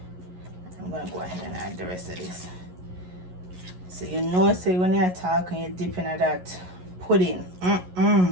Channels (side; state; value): left; late; 11 ms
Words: gonna go ahead and add the rest of this. So you know, say when you're talking, you're dipping at that pudding.